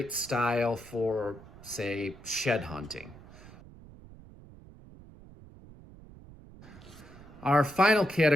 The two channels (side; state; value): right; noise; rumble, 19 dB below the sound